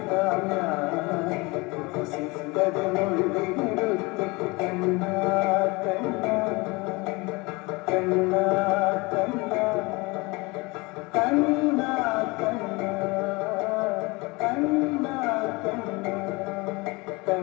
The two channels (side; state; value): right; quieter; 25.3 dB